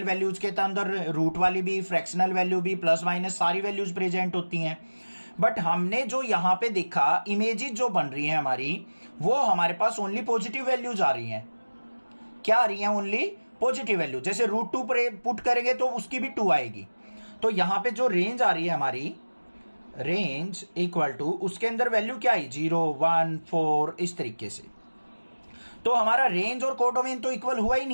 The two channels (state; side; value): inverted; both; correlation -1.00